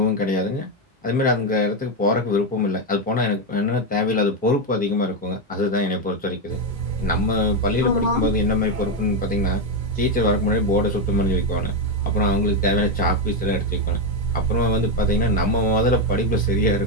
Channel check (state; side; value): normal; both; correlation 0.07